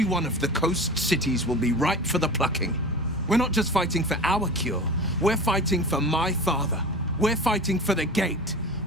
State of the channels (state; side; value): normal; both; correlation 0.34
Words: one of the coast cities will be ripe for the plucking. We're not just fighting for our cure, we're fighting for my father. We're fighting for the Gate.